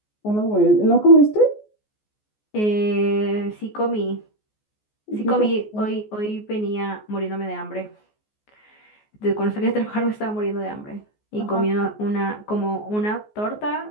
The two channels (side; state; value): right; late; 14 ms